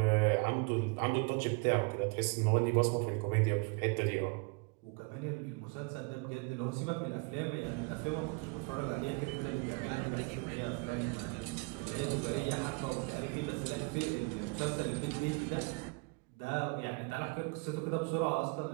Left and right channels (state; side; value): quieter; left; 30.8 dB